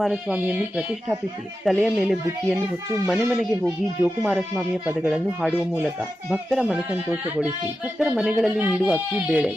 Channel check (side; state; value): both; normal; correlation 0.91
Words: ಪ್ರತಿಷ್ಠಾಪಿಸಿ ತಲೆಯ ಮೇಲೆ ಬುಟ್ಟಿಯನ್ನು ಹೊತ್ತು ಮನೆಗೆ ಹೋಗಿ ಜೋಕುಮಾರಸ್ವಾಮಿಯ ಪದಗಳನ್ನು ಹಾಡುವ ಮೂಲಕ ಭಕ್ತರ ಮನಸಂತೋಷಗೊಳಿಸಿ ಭಕ್ತರ ಮನೆಗಳಲ್ಲಿ ನೀಡುವ ಅಕ್ಕಿ, ಬೇಳೆ,